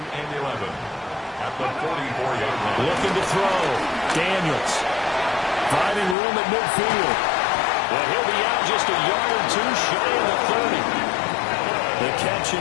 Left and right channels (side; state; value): right; drops out; at 6.2 s